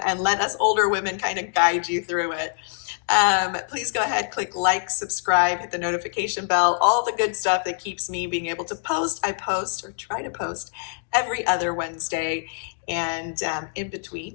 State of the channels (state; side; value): silent; right; digital silence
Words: let us older women kind of guide you through it. Please go ahead, click like, subscribe, hit the notification bell, all the good stuff that keeps me being able to post. I post or try to post every other Wednesday. And in